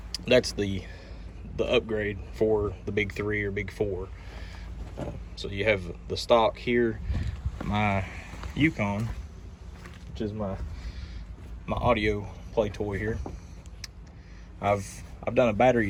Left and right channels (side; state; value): both; identical; correlation 1.00